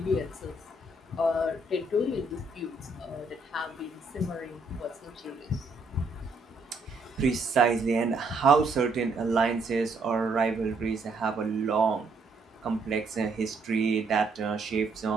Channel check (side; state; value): left; quieter; 3.2 dB